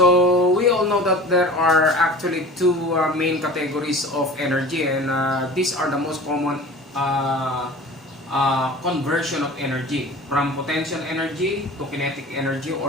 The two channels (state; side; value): normal; both; correlation 0.39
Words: we all know that there are actually two main categories of energy, and these are the most common conversion of energy from potential energy to kinetic energy